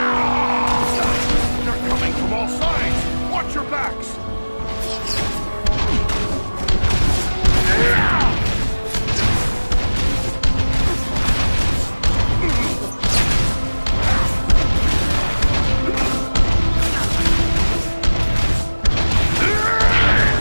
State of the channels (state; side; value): inverted; both; correlation -1.00